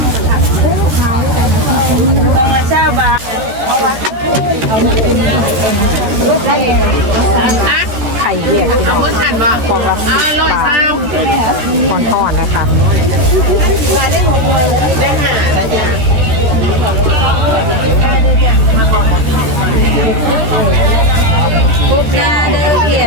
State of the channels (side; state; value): left; late; 13 ms